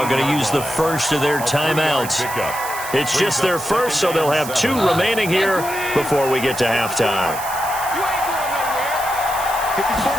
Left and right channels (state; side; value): noise; right; hiss, 10 dB below the sound